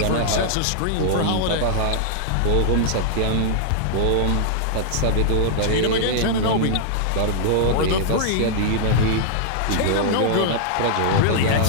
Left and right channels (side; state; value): both; different; correlation -0.01